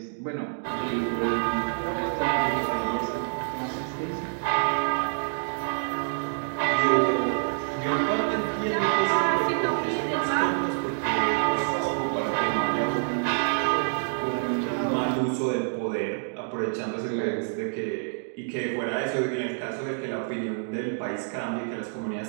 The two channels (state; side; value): silent; left; digital silence